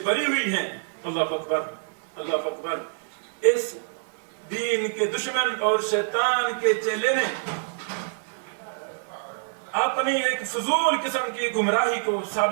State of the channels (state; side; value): silent; left; digital silence